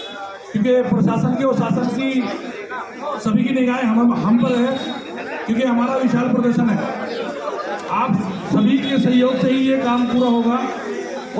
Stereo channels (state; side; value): identical; both; correlation 1.00